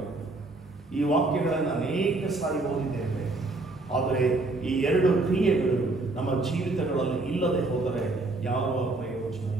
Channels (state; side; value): quieter; left; 3.1 dB